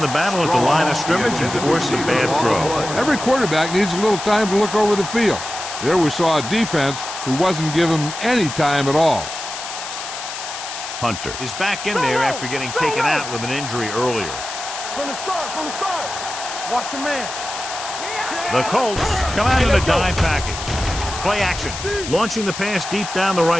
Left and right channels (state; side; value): noise; left; hiss, 8 dB below the sound